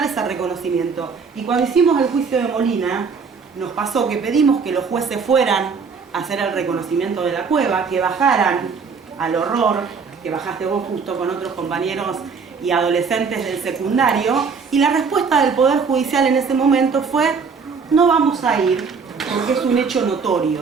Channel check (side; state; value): left; quieter; 5.4 dB